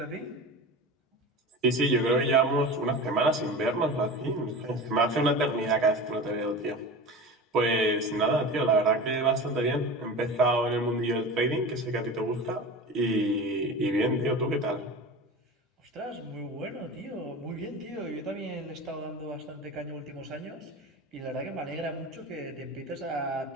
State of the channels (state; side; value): normal; both; correlation 0.31